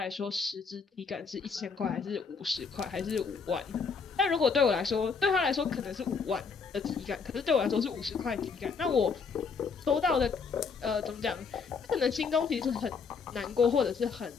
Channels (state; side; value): quieter; right; 5.3 dB